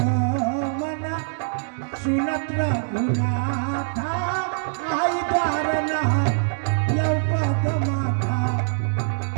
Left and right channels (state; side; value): silent; left; digital silence